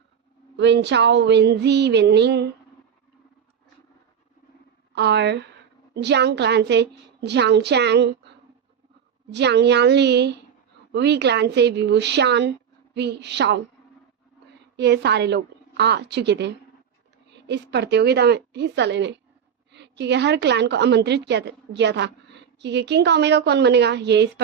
विनचाओ, विनजी, विनिंग और जियांग क्लैन से Jiang Chang, Jiang Yanli, Wei clan से विवुशान, वी शाओ, ये सारे लोग आ चुके थे इस प्रतियोगिता में हिस्सा लेने, क्योंकि हर क्लैन को आमंत्रित किया था क्योंकि किंग का ओमेगा कौन बनेगा ये इस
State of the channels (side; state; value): left; quieter; 7.9 dB